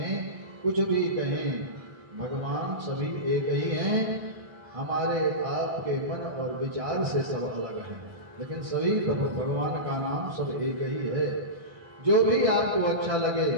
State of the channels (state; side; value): late; left; 1.6 ms